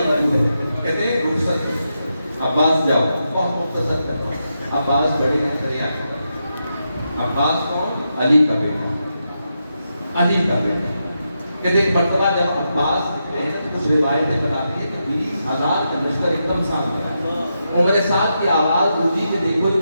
قبول ہے. کہتے ہیں رخصت, عباس جاؤ, بہت مختصر کرنا. عباس بڑی دریا کر. عباس کون, علی کا بیٹا, علی کا بیٹا. کہتے ایک مرتبہ جب عباس نکلے ہیں تو کچھ روایتیں بتاتی ہیں کہ 20,000 کا لشکر ایک دم سامنے آیا. عمر سعد کی آواز گونجی کہ دیکھو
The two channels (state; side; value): inverted; both; correlation -0.85